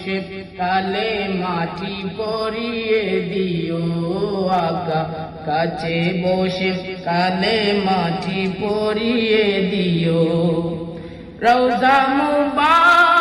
কালে মাটি পরিয়ে দিও, আকা কাছে বসে কালে মাটি পরিয়ে দিও। রওজা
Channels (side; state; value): both; identical; correlation 1.00